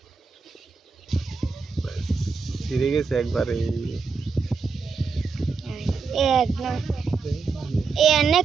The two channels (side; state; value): left; quieter; 4.9 dB